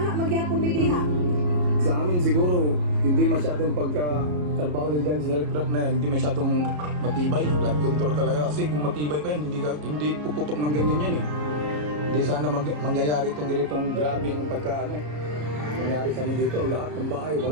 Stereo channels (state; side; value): late; left; 34 ms